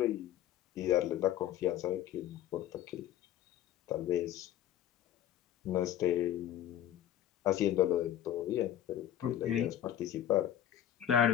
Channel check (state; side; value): quieter; right; 11.4 dB